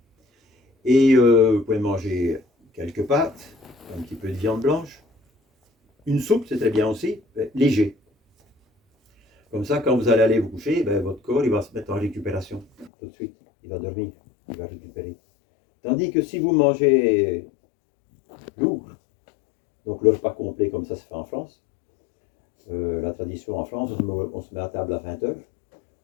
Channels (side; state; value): right; drops out; at 12.9 s